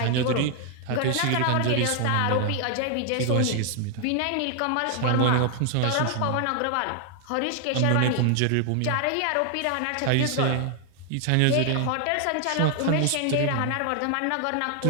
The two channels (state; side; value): different; both; correlation 0.00